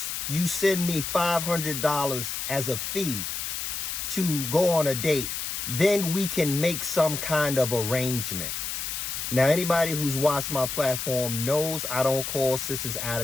you send me $500 as a fee to go on a date, then we can make some kind of arrangement. Now, anybody who's watched my platform knows I don't call sisters out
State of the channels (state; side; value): noise; left; hiss, 4 dB below the sound